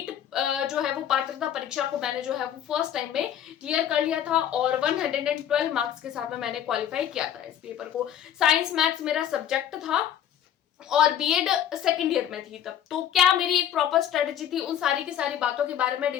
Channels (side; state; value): right; quieter; 10.1 dB